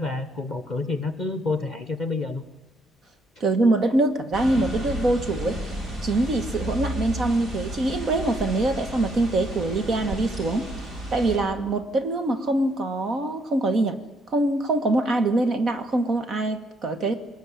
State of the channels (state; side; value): normal; both; correlation 0.71